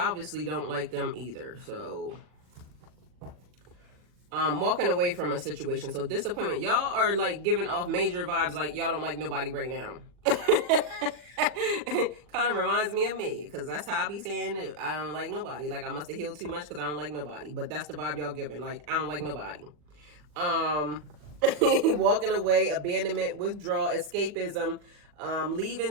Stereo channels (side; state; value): left; late; 40 ms